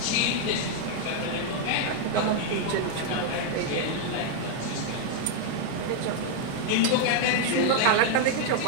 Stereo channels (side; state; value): both; different; correlation 0.00